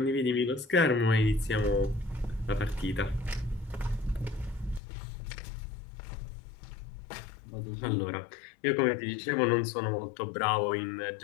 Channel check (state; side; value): drops out; right; at 4.8 s